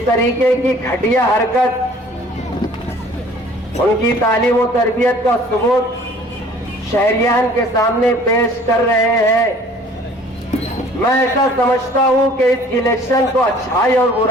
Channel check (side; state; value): both; normal; correlation 0.52